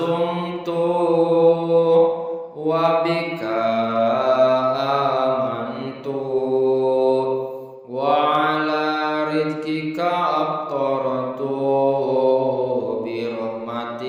wa bika amantu wa ala rizkika aftaratu bi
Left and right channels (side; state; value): both; identical; correlation 1.00